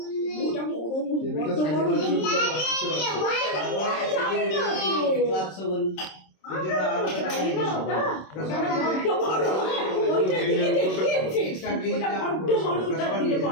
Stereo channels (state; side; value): late; right; 26 ms